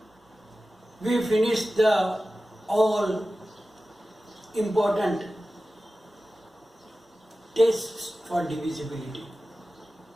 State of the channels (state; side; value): normal; both; correlation 0.95